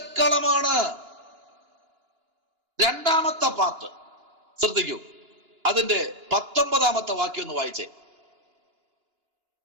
2ാമത്തെ പാർട്ട് ശ്രദ്ധിക്കൂ, അതിന്റെ 19ാമത്തെ വാക്യം ഒന്ന് വായിച്ചേ.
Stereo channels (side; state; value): left; late; 2.9 ms